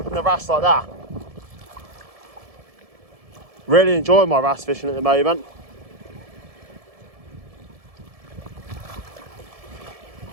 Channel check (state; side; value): late; left; 1.7 ms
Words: the wrasse like that. Really enjoying my wrasse fishing at the moment.